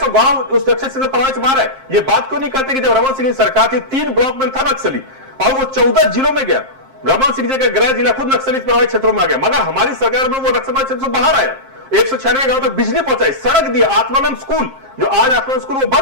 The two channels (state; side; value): late; left; 7.5 ms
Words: गांव उस लक्ष्य से प्रभावित से बाहर है। ये बात क्यों नहीं करते कि जब रमन सिंह की सरकार थी 3 ब्लॉक में था नक्सली और वो 14 जिलों में गया। रमन सिंह जी का गृह जिला खुद नक्सली प्रभावित क्षेत्रों में आ गया, मगर हमारी सरकार में वो नक्सल क्षेत्र से बाहर आया। 196 गांव तक बिजली पहुंचाई, सड़क दिया, आत्मानंद स्कूल, जो आज आत्मानंद स्कूल वो